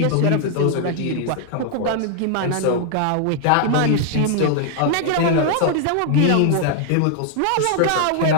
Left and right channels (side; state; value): both; different; correlation 0.00